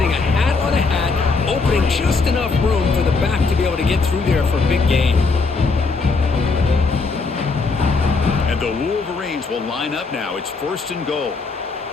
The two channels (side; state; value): right; quieter; 4.2 dB